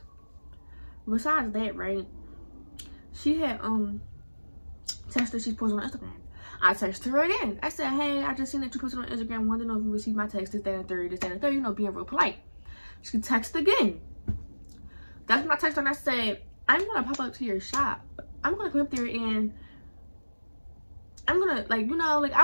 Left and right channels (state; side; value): inverted; both; correlation -1.00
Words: right, she had texted, she posted on Instagram. I texted her again. I said, hey, I just seen that you posted on Instagram, wanted to know if you received my text, this, that, and third, you know, being real polite. She texted again. That's when I texted her and I said, I'm gonna pop up to your shop. I'm gonna come up there and I'm gonna, like, you know, like, I